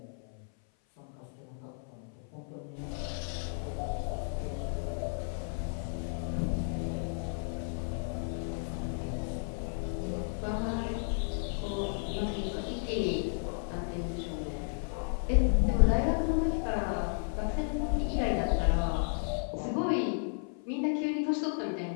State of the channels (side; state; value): right; silent; 56 dB below the other